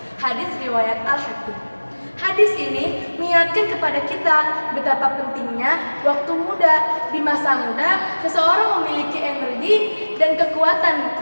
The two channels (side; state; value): both; inverted; correlation -1.00